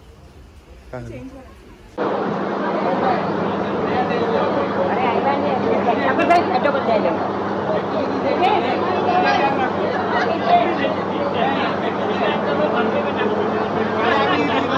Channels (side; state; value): both; identical; correlation 1.00